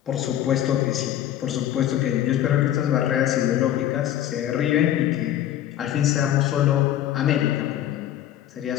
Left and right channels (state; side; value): quieter; right; 11.8 dB